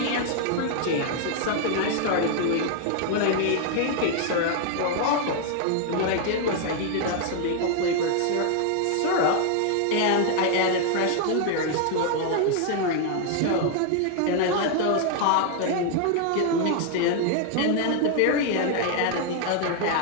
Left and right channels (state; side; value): different; both; correlation 0.00